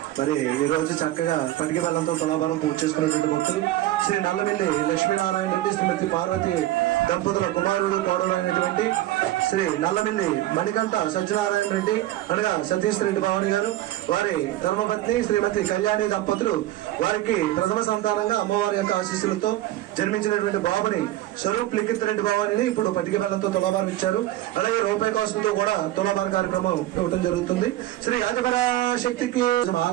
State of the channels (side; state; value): left; quieter; 15.0 dB